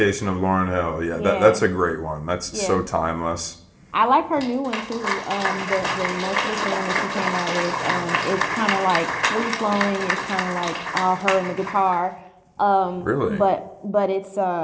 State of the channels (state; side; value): identical; both; correlation 1.00